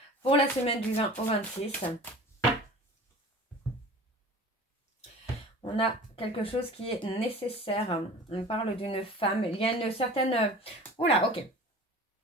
Pour la semaine du 20 au 26. On a quelque chose qui est nécessaire. On parle d'une femme. Il y a une certaine... Oula, ok.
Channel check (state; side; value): normal; both; correlation 0.40